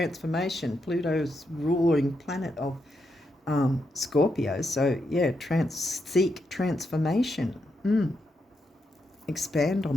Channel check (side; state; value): both; normal; correlation 0.82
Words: Pluto's ruling planet of Scorpio. So, yeah, seek transformation. Expand